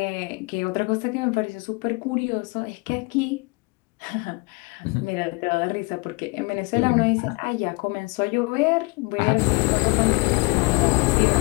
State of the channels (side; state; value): right; quieter; 27.3 dB